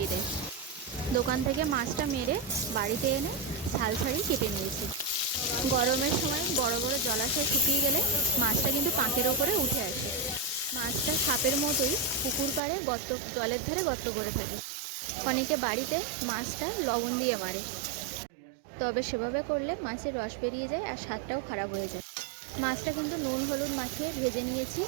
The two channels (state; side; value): drops out; left; at 12.6 s